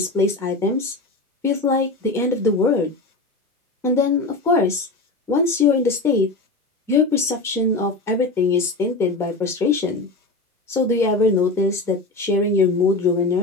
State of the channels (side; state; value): right; quieter; 3.3 dB